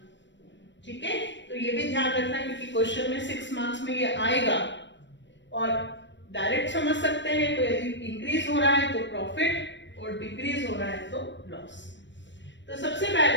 ठीक है, तो ये भी ध्यान रखना क्योंकि क्वेश्चन में 6 मार्क्स में ये आएगा और डायरेक्ट समझ सकते हैं। तो यदि इंक्रीज हो रहा है तो प्रॉफिट और डिक्रीज हो रहा है तो लॉस। तो सबसे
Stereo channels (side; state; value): right; late; 0.53 ms